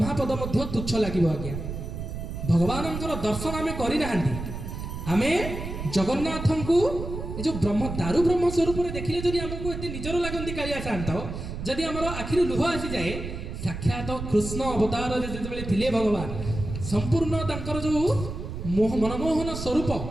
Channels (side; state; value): right; noise; rumble, 7 dB below the sound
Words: ମଧ୍ୟ ତୁଚ୍ଛ ଲାଗିବ ଆଜ୍ଞା। ଭଗବାନଙ୍କର ଦର୍ଶନ ଆମେ କରିନାହାନ୍ତି, ଆମେ ଜଗନ୍ନାଥଙ୍କୁ ଏ ଯେଉଁ ଦାରୁ ବ୍ରହ୍ମ ସ୍ୱରୂପରେ ଦେଖିଲେ ଯଦି ଆମକୁ ଏତେ ନିଜର ଲାଗନ୍ତି କାଳିଆ ଶାନ୍ତ, ଯଦି ଆମର ଆଖିରୁ ଲୁହ ଆସିଯାଏ, ସାକ୍ଷାତ କୃଷ୍ଣ ଅବତାରରେ ଯେତେବେଳେ ଥିଲେ ଭଗବାନ, ସମ୍ପୂର୍ଣ୍ଣ ତାଙ୍କର ଯେଉଁ ମନମୋହନ ସ୍ୱରୂପ